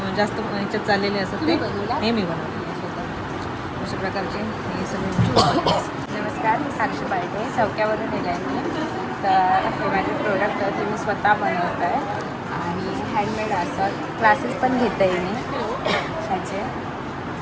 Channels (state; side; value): identical; both; correlation 1.00